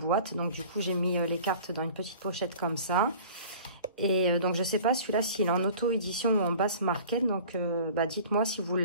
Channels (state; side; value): inverted; both; correlation -0.44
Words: Donc, du coup, j'ai mis les cartes dans une petite pochette comme ça. Et donc, je ne sais pas celui-là s'il est en auto-édition ou en basse market. Donc, dites-moi si vous